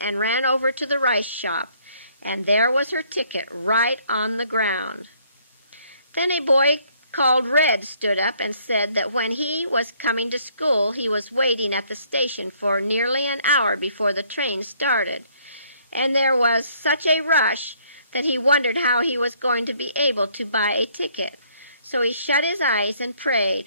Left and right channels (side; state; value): both; inverted; correlation -0.64